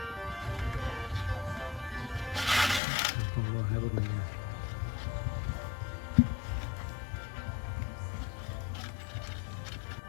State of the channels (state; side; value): drops out; right; at 2.8 s